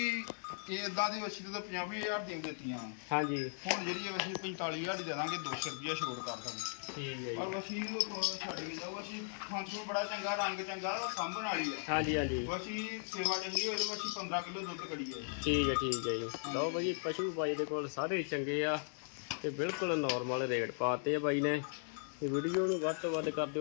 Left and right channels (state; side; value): silent; right; digital silence